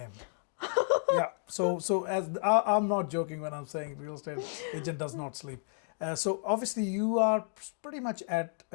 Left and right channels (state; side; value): silent; right; 56 dB below the other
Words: So as I'm not joking when I'm saying real estate agent does not sleep. So obviously you are pretty much at